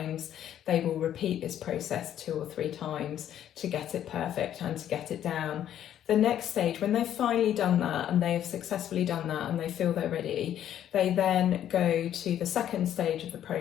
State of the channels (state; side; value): quieter; right; 10.8 dB